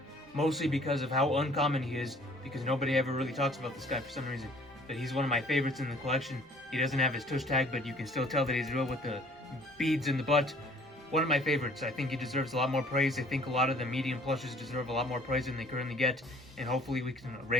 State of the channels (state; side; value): normal; both; correlation 0.55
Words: mostly because of how uncommon he is, because nobody ever really talks about this guy for some reason. But he's one of my favorites in the collection. He doesn't have his tush tag, but you can still tell that he's real with the beads in the butt. One of my favorites. I think he deserves a lot more praise. I think a lot of the medium plushes deserve a lot more praise than they currently get, and hopefully we can